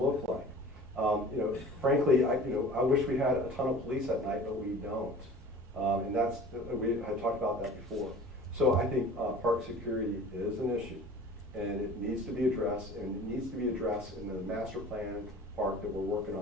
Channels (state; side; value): normal; both; correlation 0.42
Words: like? Frankly, I wish we had a ton of police at night, but we don't. And we had talked about that before. So I think park security is an issue, and it needs to be addressed, and it needs to be addressed in the master plan park that we're working